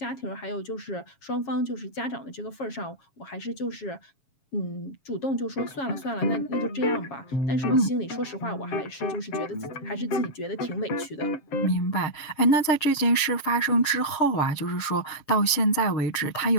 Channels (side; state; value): right; late; 7.2 ms